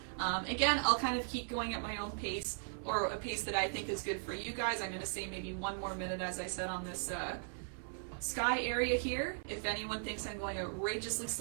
Again, I'll kind of keep going at my own pace, or a pace that I think is good for you guys. I'm going to say maybe 1 more minute, as I said, on this sky area here. If anyone thinks I'm going outrageously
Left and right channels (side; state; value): left; silent; 52 dB below the other